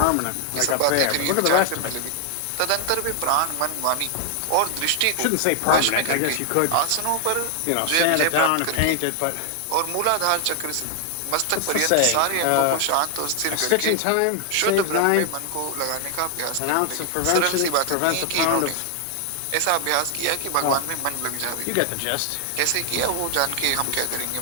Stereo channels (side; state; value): both; different; correlation 0.00